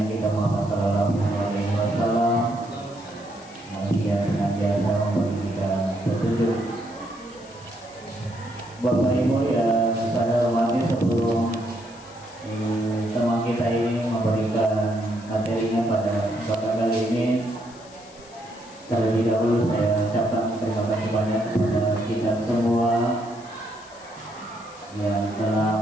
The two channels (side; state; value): left; noise; hiss, 23 dB below the sound